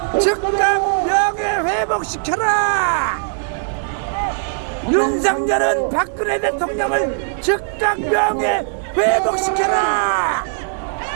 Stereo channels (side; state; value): left; silent; digital silence